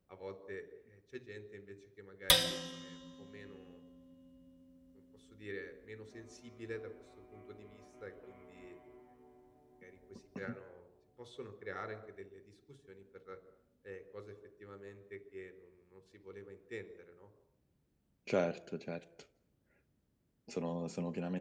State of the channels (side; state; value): both; identical; correlation 1.00